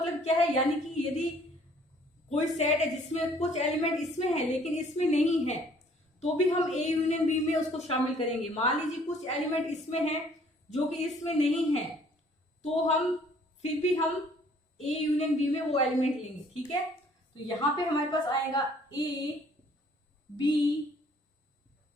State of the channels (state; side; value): normal; both; correlation 0.59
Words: क्या है, यानी कि यदि कोई सेट है जिसमें कुछ एलिमेंट इसमें है लेकिन इसमें नहीं है, तो भी हम A यूनियन B में उसको शामिल करेंगे। मान लीजिए कुछ एलिमेंट इसमें है जो कि इसमें नहीं है, तो हम फिर भी हम A यूनियन B में वो एलिमेंट लेंगे। ठीक है, तो यहां पे हमारे पास आएगा A B